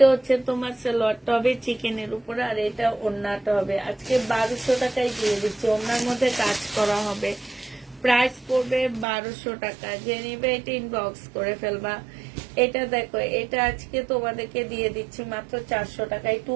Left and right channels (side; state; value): left; drops out; at 9.1 s